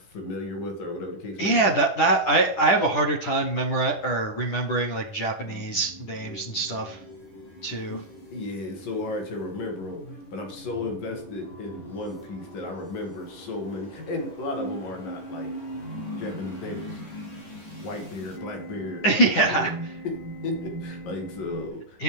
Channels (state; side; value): late; right; 10 ms